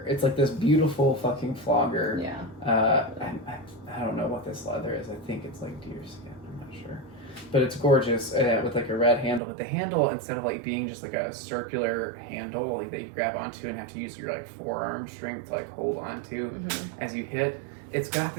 It's like this beautiful fucking flogger. Yeah. I don't know what this leather is. I think it's like deer skin. I'm not sure, but it's gorgeous with like a red handle. But the handle, instead of like being just like a circular handle like that you grab onto and have to use your like forearm strength to like hold onto as you hit, it's got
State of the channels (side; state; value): left; drops out; at 9.4 s